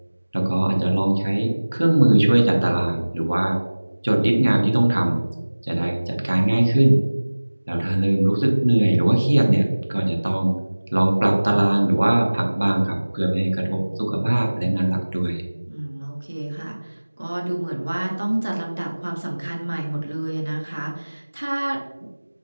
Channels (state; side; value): inverted; both; correlation -1.00